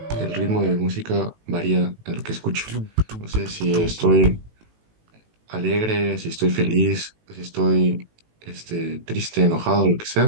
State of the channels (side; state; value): left; late; 18 ms